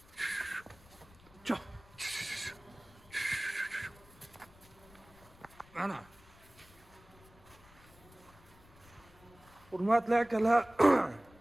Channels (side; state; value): left; noise; rumble, 25 dB below the sound